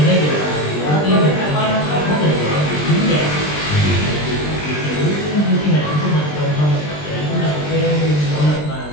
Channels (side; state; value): right; late; 20 ms